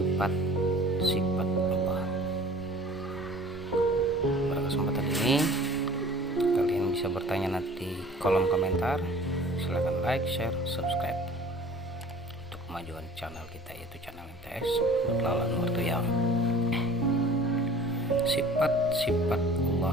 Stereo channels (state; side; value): normal; both; correlation 0.47